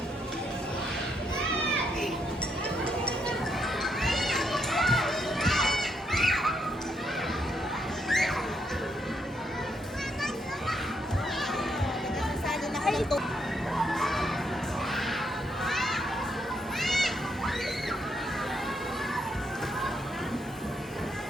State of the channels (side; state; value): both; normal; correlation 0.76